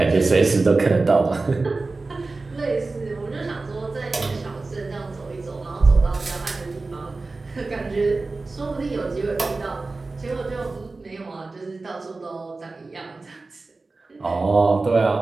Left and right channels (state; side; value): quieter; left; 3.5 dB